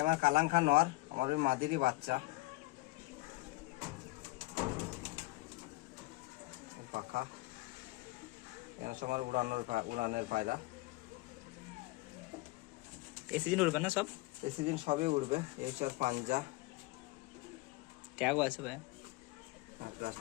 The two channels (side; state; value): right; quieter; 21.3 dB